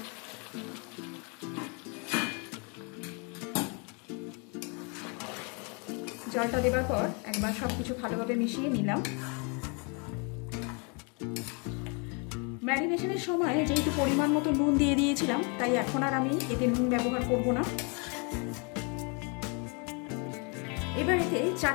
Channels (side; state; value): right; quieter; 34.6 dB